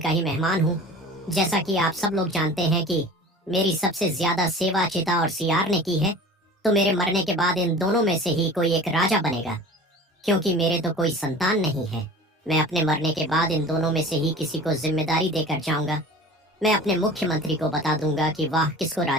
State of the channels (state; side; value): normal; both; correlation 0.40